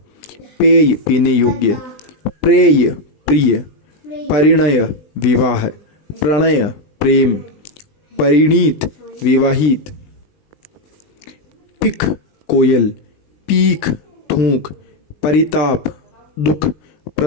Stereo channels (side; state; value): right; late; 20 ms